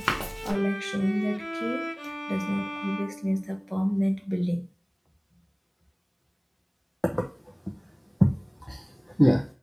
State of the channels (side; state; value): both; identical; correlation 1.00